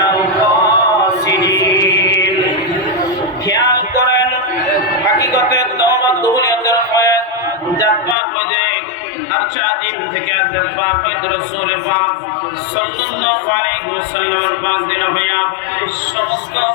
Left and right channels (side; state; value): right; drops out; at 8.2 s